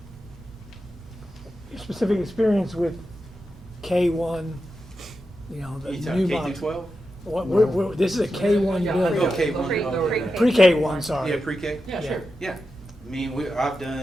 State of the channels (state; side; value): normal; both; correlation 0.90